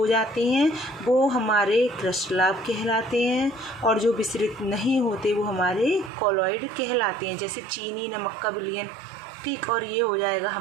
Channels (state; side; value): drops out; left; at 6.1 s